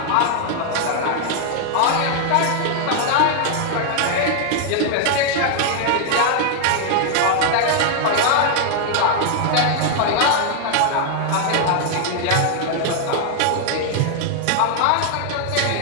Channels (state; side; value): different; both; correlation 0.00